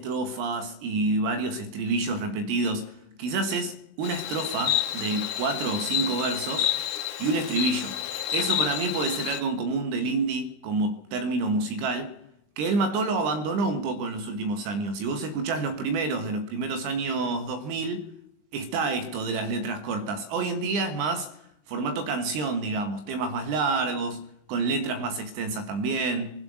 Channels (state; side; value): late; left; 20 ms